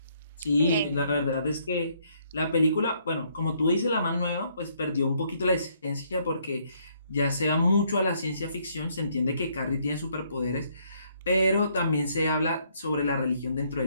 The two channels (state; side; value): inverted; both; correlation -0.69